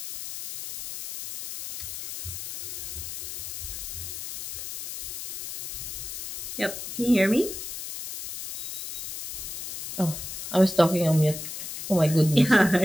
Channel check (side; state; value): left; noise; hiss, 7 dB below the sound